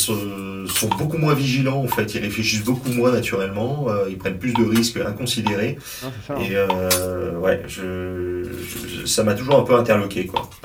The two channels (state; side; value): identical; both; correlation 1.00